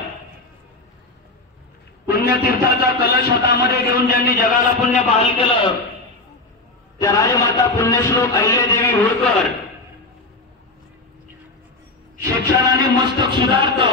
पुण्यतीर्थाचा कलश हातामध्ये घेऊन ज्यांनी जगाला पुण्य बहाल केलं त्या राजमाता पुण्यश्लोक अहिल्यादेवी होळकर, शिक्षणाने मस्तक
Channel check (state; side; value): quieter; right; 3.1 dB